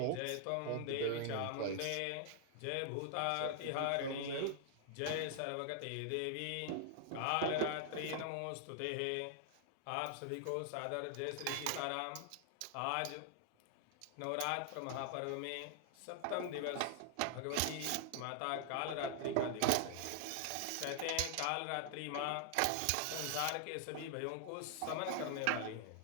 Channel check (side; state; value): both; different; correlation 0.00